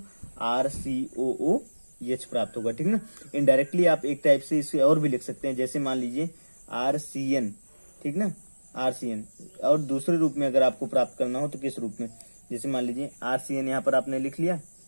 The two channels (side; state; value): both; inverted; correlation -1.00